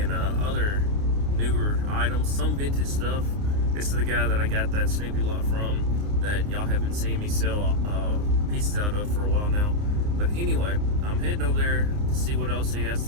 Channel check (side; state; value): left; late; 29 ms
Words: other newer items, some vintage stuff. This is the guy that I got that Snoopy lot from that y'all have been seeing me sell pieces out of for a while now. But anyway, I'm heading over there to see what else he has